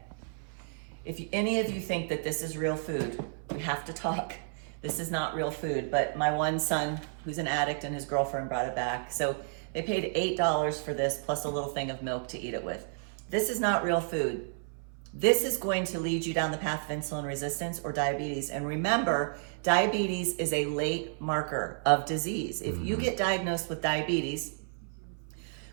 if any of you think that this is real food, we have to talk. This is not real food, but my one son, who's an addict, and his girlfriend brought it back. So they paid $8 for this plus a little thing of milk to eat it with. This is not real food. This is going to lead you down the path of insulin resistance or diabetes. And remember, diabetes is a late marker of disease. If you get diagnosed with diabetes,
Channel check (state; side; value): silent; left; 57 dB below the other